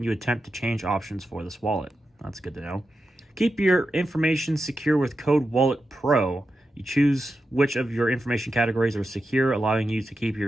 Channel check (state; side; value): normal; both; correlation 0.89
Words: you attempt to change options for this wallet. That's good to know. Keep your information secure with Code Wallet Pro. You choose which of your information categories are secure, allowing you to keep